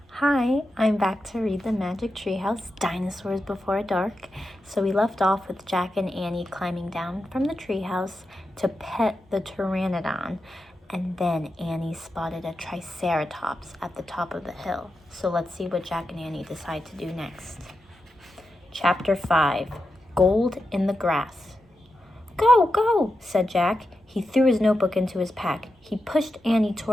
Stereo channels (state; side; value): normal; both; correlation 0.89